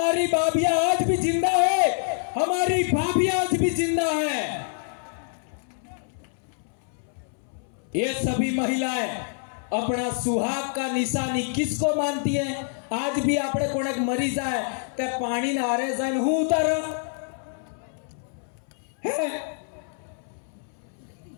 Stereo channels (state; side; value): silent; right; 61 dB below the other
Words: भाभियां आज भी जिंदा है, हमारी भाभियां आज भी जिंदा है। ये सभी महिलाएं अपना सुहाग का निशानी किसको मानती है? आज भी आपने कोने मरी जाए ते पानी ना हारे जाए हूं उतार है